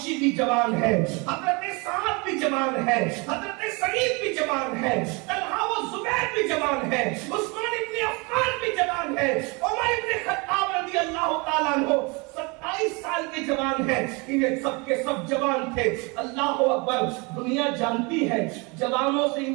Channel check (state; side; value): quieter; left; 29.0 dB